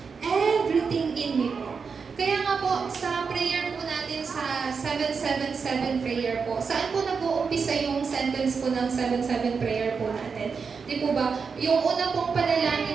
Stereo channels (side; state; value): left; quieter; 5.5 dB